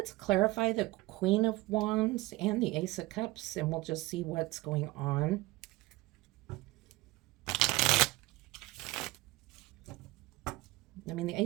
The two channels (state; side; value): quieter; left; 20.2 dB